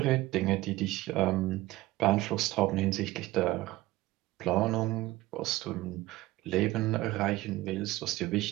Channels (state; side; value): quieter; left; 17.9 dB